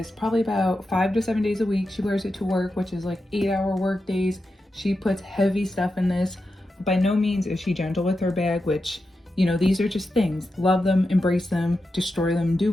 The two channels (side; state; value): both; normal; correlation 0.89